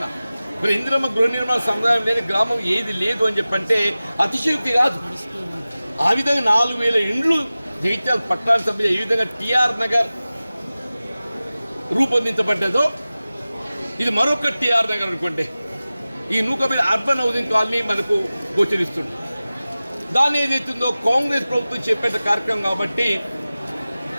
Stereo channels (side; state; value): both; inverted; correlation -0.97